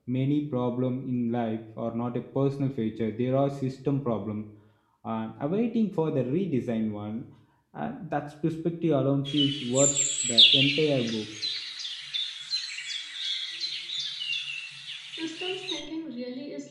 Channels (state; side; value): identical; both; correlation 1.00